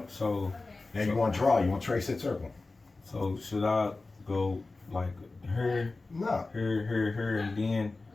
So Now you want to draw, you want to trace that circle. So should I go like here, No. here, and then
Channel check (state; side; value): quieter; right; 3.5 dB